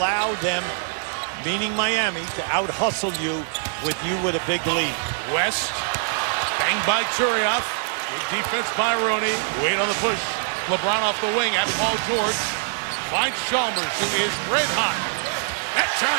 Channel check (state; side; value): silent; left; digital silence